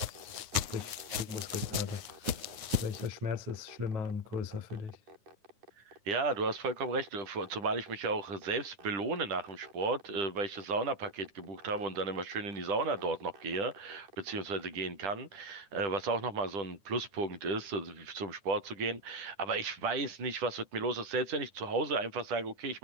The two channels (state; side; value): late; left; 9.6 ms